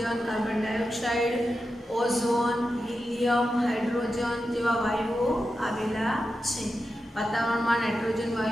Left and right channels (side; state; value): both; normal; correlation 0.90